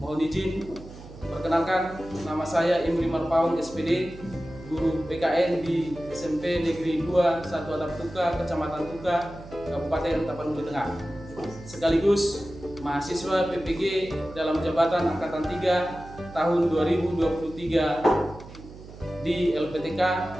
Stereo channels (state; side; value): noise; right; hum, 16 dB below the sound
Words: izin perkenalkan, nama saya Imri Marpaung SPD, guru PKN di SMP Negeri 2 1 Atap Tuka, Kecamatan Tuka, Kabupaten Tapanuli Tengah. Sekaligus mahasiswa PPG dalam jabatan Angkatan 3 tahun 2023 di LPTK